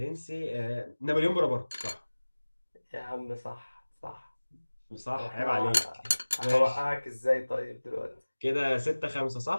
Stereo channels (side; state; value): both; inverted; correlation -1.00